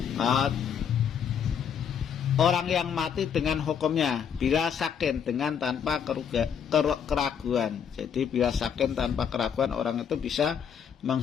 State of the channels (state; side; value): quieter; right; 7.7 dB